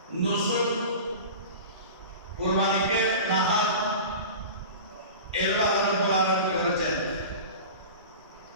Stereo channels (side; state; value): both; inverted; correlation -0.34